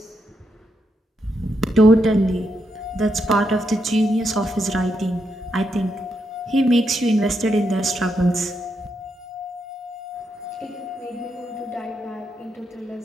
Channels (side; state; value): both; normal; correlation 0.81